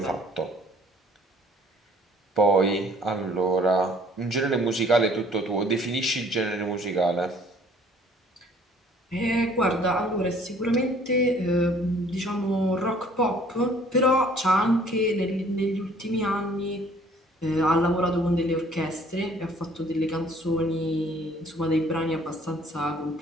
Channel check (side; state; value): both; normal; correlation 0.56